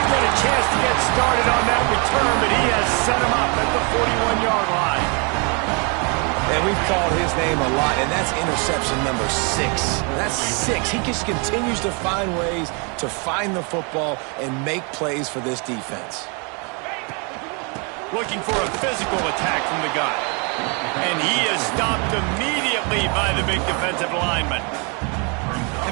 get a chance to get started on that return, but he has set him up at the 41-yard line. And we've called his name a lot, and that's interception number 6. That's 6. He just continues to find ways to find the football and make plays for this defense. Looking for a physical attack from the guy. And he is stopped immediately by the big defensive lineman.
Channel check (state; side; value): quieter; left; 34.2 dB